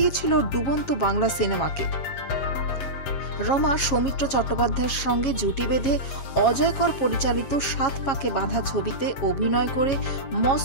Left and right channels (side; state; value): right; late; 7.3 ms